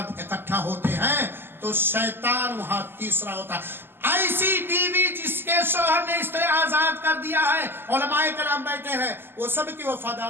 اکٹھا ہوتے ہیں تو شیطان وہاں تیسرا ہوتا ہے۔ ایسی بیوی جس کے شوہر نے اس طرح آزاد کر دیا ہے، علماء کرام بیٹھے ہیں، وہ سب کی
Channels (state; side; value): late; left; 0.10 ms